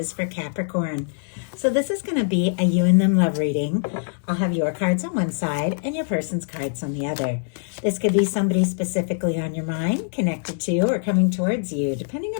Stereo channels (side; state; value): right; silent; digital silence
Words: for Capricorn. So this is going to be a you and them love reading. I'll have your cards on one side and your person's cards on the other. This could be somebody specifically on your mind, connected to, or coming towards you, depending